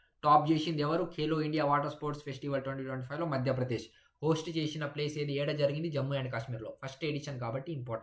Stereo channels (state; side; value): identical; both; correlation 1.00